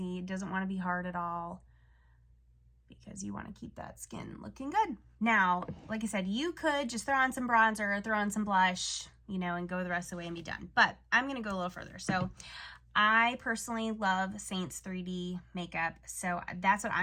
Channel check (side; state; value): both; identical; correlation 1.00